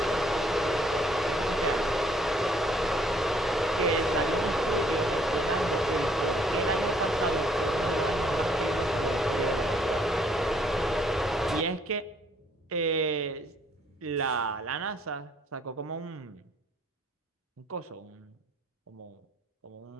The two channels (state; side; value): normal; both; correlation 0.64